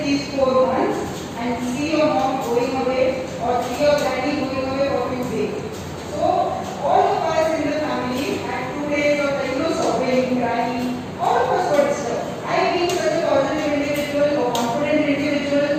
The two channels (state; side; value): identical; both; correlation 1.00